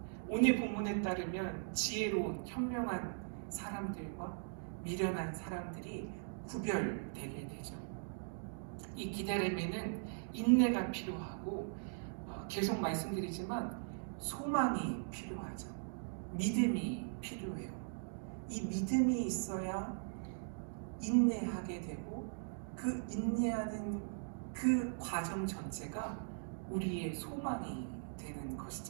오늘 본문에 따르면 지혜로운 현명한 사람들과 미련한 사람들이 구별되게 되죠. 이 기다림에는 인내가 필요하고 계속 말씀드리지만 소망이 필요하죠. 믿음이 필요해요. 이 믿음이 있어야 인내하게 되고 그 인내하는 그 과정 전체가 우리의 소망이 되는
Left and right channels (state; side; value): silent; left; digital silence